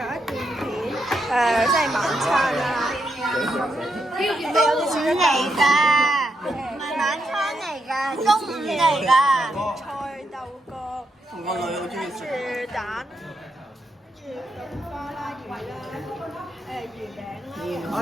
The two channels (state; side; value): normal; both; correlation 0.82